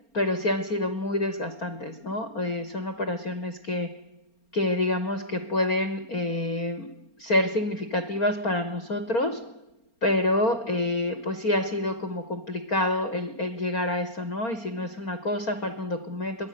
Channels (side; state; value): right; late; 4.4 ms